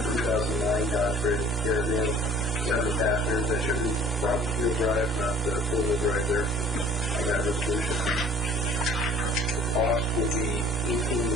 Dodge Ram Caravan, 7 passengers. That should be front wheel drive, not four-wheel drive there on that resolution. The cost will be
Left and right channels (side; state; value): both; normal; correlation 0.51